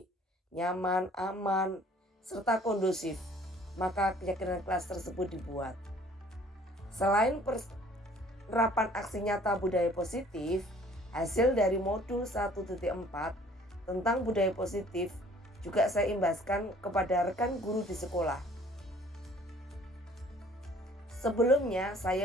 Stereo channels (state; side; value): normal; both; correlation 0.55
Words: nyaman, aman, serta kondusif, maka keyakinan kelas tersebut dibuat. Selain penerapan aksi nyata budaya positif, hasil dari modul 1.4 tentang budaya positif juga saya imbaskan kepada rekan guru di sekolah. Sebelumnya